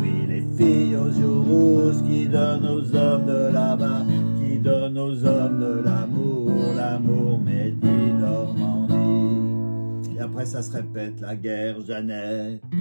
les filles aux joues rouges qui donnent aux hommes de là-bas, qui donnent aux hommes de l'amour, l'amour Medi Normandie. Et après ça se répète, la guerre Jeannette,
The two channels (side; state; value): both; inverted; correlation -1.00